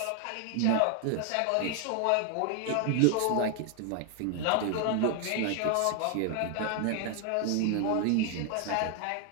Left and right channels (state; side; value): different; both; correlation 0.00